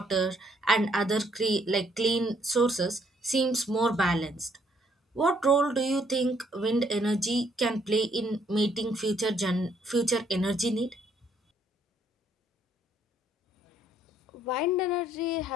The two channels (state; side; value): normal; both; correlation 0.68